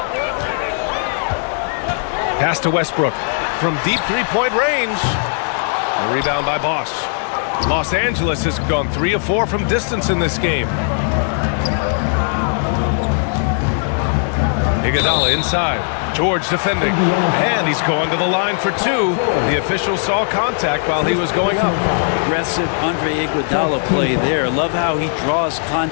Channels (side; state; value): right; silent; digital silence